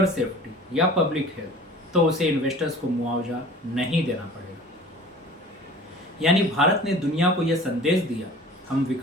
सेफ्टी या पब्लिक हेल्थ, तो उसे इन्वेस्टर्स को मुआवजा नहीं देना पड़ेगा। यानी भारत ने दुनिया को यह संदेश दिया, हम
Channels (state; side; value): normal; both; correlation 0.44